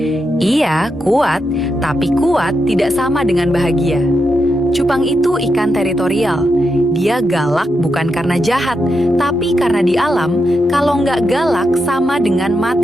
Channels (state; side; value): normal; both; correlation 0.85